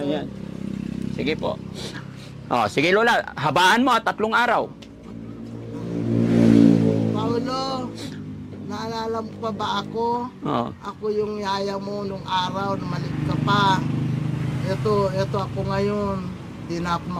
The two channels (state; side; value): identical; both; correlation 1.00